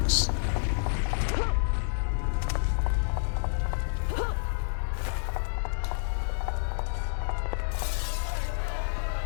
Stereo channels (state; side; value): silent; right; digital silence